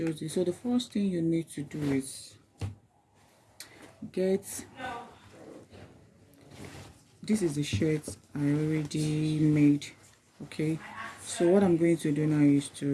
do. So the first thing you need to do is get, this is the shirt I already made. Okay, so what I'm going to do now is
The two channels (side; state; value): both; identical; correlation 1.00